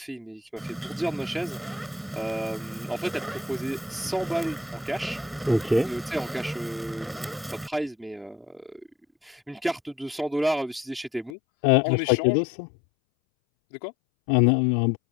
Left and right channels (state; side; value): drops out; right; at 11.3 s